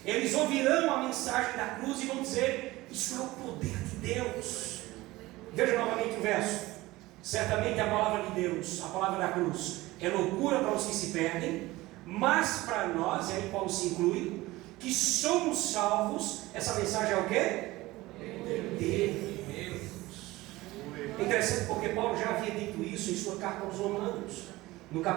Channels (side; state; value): left; quieter; 19.1 dB